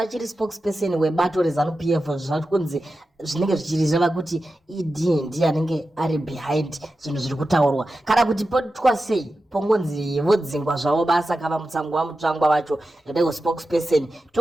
spokesperson webato reZANU-PF zvakunzi zvinenge zvichireva kuti ED ndiye anenge ari behind zvinhu zviri kutaurwa, kana kuti potwa sei pongonzi vodzingwa zvavo basa kava Mutsvangwa vacho ndego spokesperson,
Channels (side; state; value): both; normal; correlation 0.92